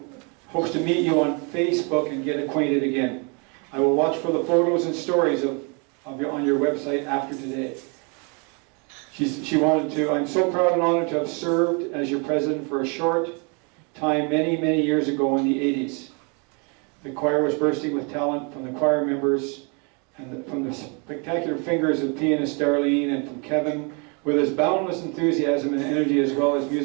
hopes to meet you on Facebook and get acquainted again. I will watch for the photos and stories on your website after today. She wanted to... I'm so proud and honored to have served as your president for a short time many, many years ago in the 80s. The choir was bursting with talent from the choir members and from the spectacular fingers of pianist Darlene and from Kevin with his boundless enthusiasm and energy as well as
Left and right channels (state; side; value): quieter; left; 34.0 dB